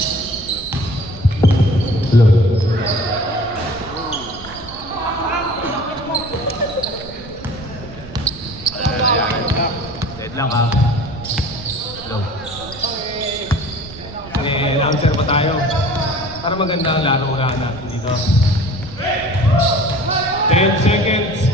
Lang ha. Hello. May announcer pa tayo. Para maganda ang laro natin dito. 10 seconds.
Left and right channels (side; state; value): right; noise; rumble, 16 dB below the sound